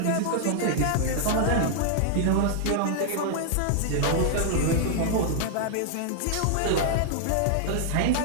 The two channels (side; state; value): both; different; correlation 0.00